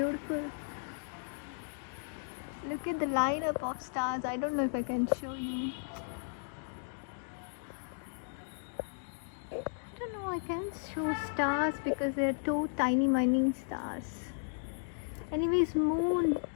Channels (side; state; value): right; silent; digital silence